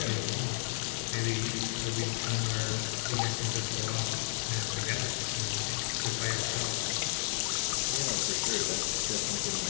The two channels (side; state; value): right; silent; digital silence